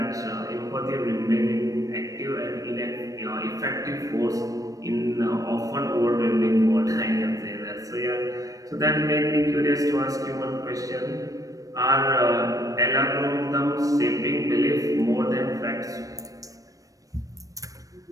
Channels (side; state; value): left; late; 0.16 ms